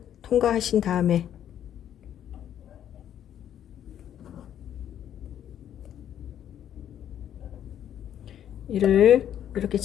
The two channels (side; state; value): right; quieter; 10.3 dB